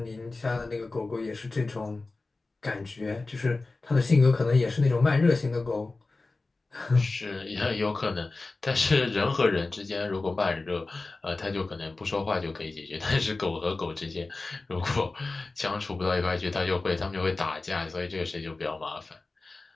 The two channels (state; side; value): quieter; right; 3.4 dB